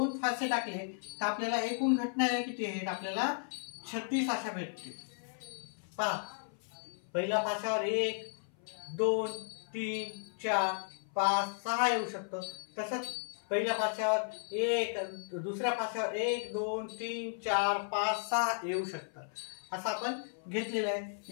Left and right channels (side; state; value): right; silent; 55 dB below the other